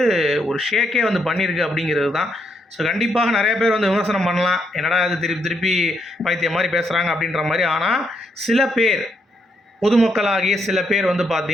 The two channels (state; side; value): normal; both; correlation 0.77